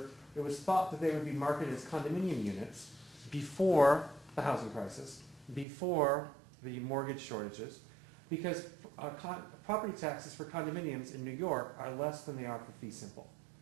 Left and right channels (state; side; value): drops out; left; at 5.7 s